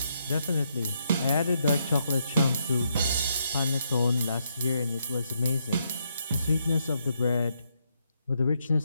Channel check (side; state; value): both; inverted; correlation -0.77